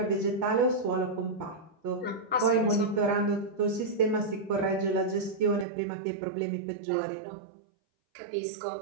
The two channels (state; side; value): drops out; left; at 5.7 s